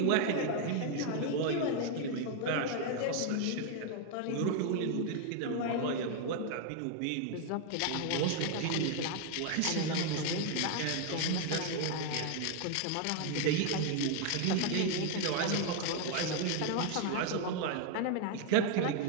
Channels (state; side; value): different; both; correlation 0.01